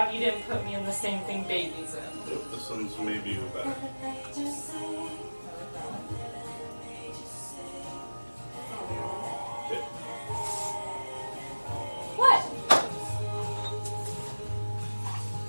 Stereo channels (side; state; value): both; inverted; correlation -1.00